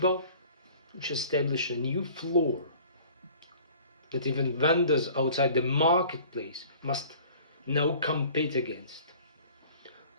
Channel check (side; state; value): both; inverted; correlation -0.48